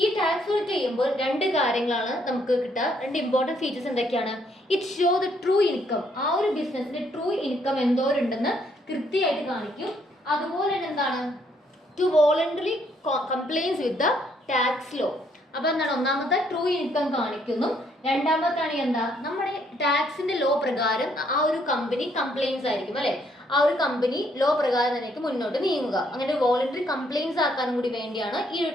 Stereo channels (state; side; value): normal; both; correlation 0.70